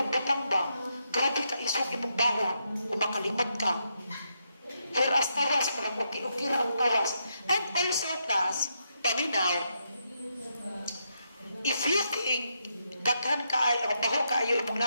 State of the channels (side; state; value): both; inverted; correlation -0.80